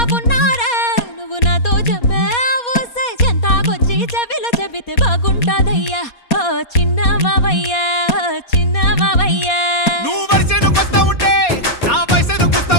ఉన్నారా నువ్వు నాతో చెప్పావు చెంతాకొచ్చి చెవిలో చెబితే బాగుంటాదయ్యా ఓ చిన్న మావయ్యా నువ్వు వరిసేనుకొస్తా ఉంటే నా వయసేను కూస్తా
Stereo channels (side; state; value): right; late; 4.2 ms